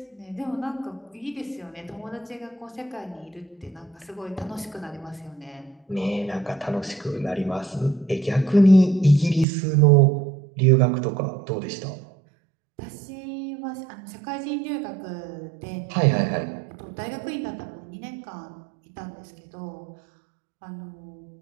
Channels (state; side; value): drops out; left; at 9.5 s